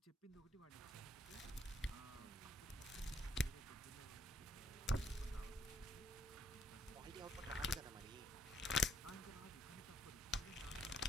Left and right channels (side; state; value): both; normal; correlation 0.69